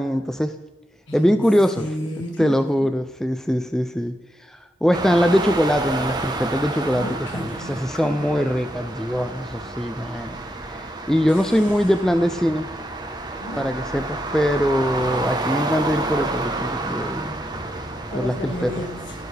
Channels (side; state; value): both; normal; correlation 0.85